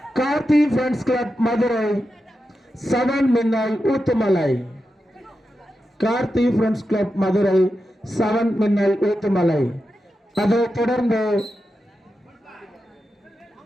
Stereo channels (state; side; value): normal; both; correlation 0.89